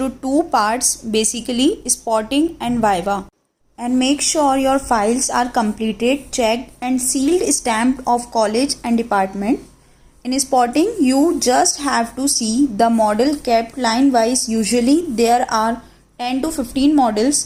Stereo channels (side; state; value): both; identical; correlation 1.00